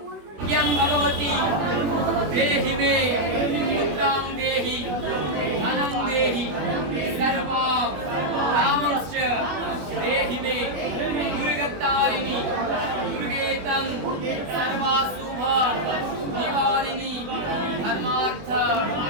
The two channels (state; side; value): late; left; 21 ms